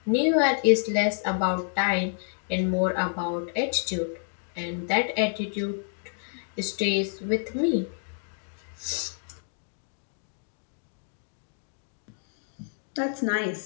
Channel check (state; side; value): silent; right; digital silence